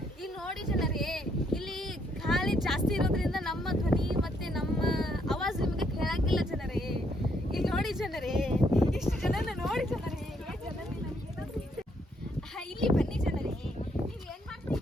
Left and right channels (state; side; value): normal; both; correlation 0.72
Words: ಈಗ ನೋಡಿ ಜನರೇ, ಇಲ್ಲಿ ಗಾಳಿ ಜಾಸ್ತಿ ಇರೋದ್ರಿಂದ ನಮ್ಮ ಧ್ವನಿ ಮತ್ತೆ ನಮ್ಮ ಆವಾಜ್ ನಿಮಗೆ ಕೇಳಂಗಿಲ್ಲ ಜನರೇ. ಈಗ ನೋಡಿ ಜನರೇ, ಇಷ್ಟು ಜನನ ನೋಡಿ ಜನರೇ. ಇಲ್ಲಿ ಬನ್ನಿ ಜನರೇ. ನೀವು ಏನ್